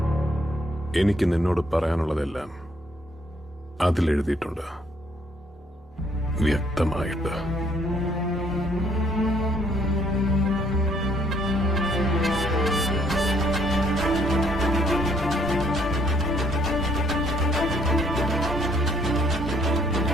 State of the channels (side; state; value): both; normal; correlation 0.67